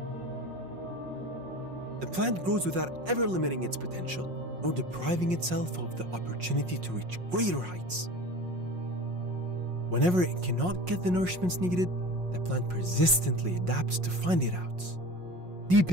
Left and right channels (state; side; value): late; left; 5.5 ms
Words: The plant grows without ever limiting its potential, nor depriving itself of the opportunity to reach greater heights. Whenever it cannot get the nourishments needed, the plant persistently adapts to find it out,